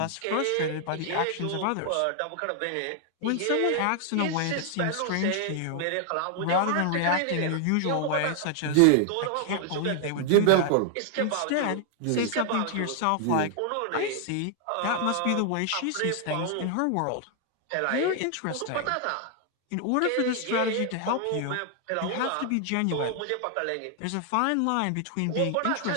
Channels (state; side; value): different; both; correlation 0.00